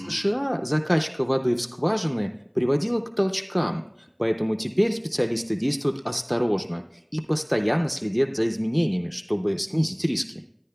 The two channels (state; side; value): identical; both; correlation 1.00